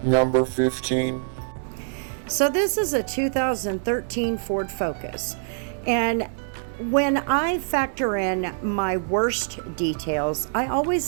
Number 15. So this is a 2013 Ford Focus, and when I factor in my worst details, I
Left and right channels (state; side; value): silent; left; digital silence